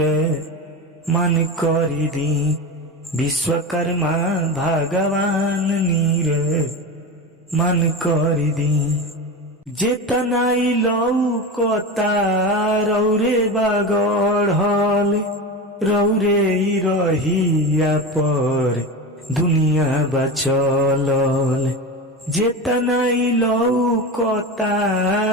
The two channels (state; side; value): normal; both; correlation 0.24